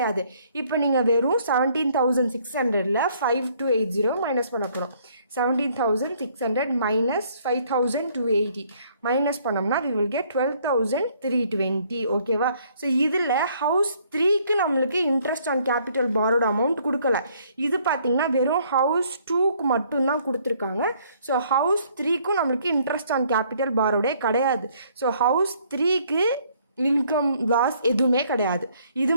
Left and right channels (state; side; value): inverted; both; correlation -0.64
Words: இப்போ நீங்கள் வெறும் 17,600ல் 5,280 மைனஸ் பண்ண போகிறோம். 17,600 minus 5,280 மைனஸ் பண்ணோம்னா we will get 12,320. ஓகேவா? ஸோ இதில் ஹவுஸ் 3க்கு நம்மளுக்கு இன்ட்ரெஸ்ட் ஆன் கேபிட்டல் பாரோட அமௌண்ட் கொடுக்கல. இது பார்த்தீங்கன்னா வெறும் ஹவுஸ் 2க்கு மட்டும்தான் கொடுத்துருக்காங்க. ஸோ ஹவுஸ் 3க்கும் நம்மளுக்கு இன்ட்ரெஸ்ட் ஆன் கேபிட்டல் பாரோடே கிடையாது. ஸோ ஹவுஸ் 3க்கு இன்கம் லாஸ் எதுவுமே கிடையாது. இது